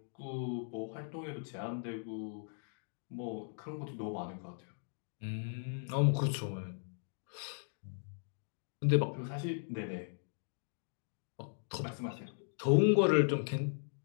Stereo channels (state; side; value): silent; right; digital silence